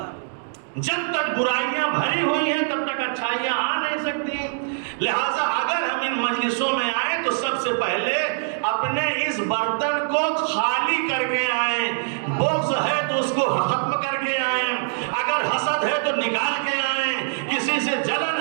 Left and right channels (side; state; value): left; silent; digital silence